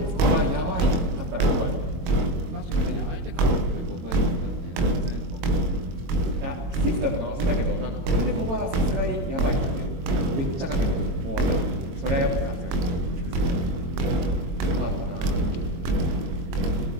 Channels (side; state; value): left; late; 23 ms